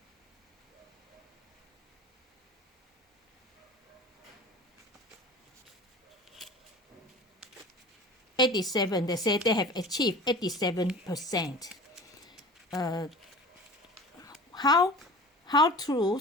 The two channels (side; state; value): both; normal; correlation 0.39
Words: They say they have achieved 87%. How true